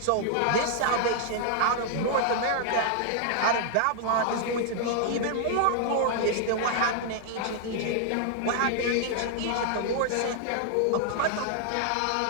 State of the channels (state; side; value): different; both; correlation 0.00